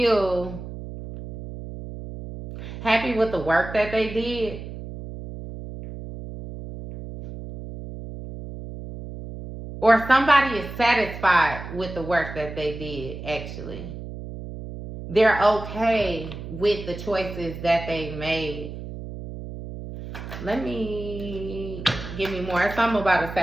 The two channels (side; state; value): right; noise; hum, 10 dB below the sound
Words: happy with the work that they did. Or somebody is satisfied with the work that they did, actually. They're okay with the choices that they made. Give me more. It's something about a